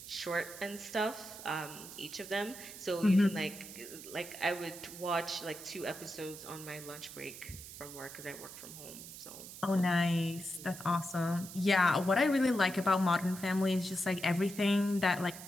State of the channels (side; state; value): right; noise; hiss, 13 dB below the sound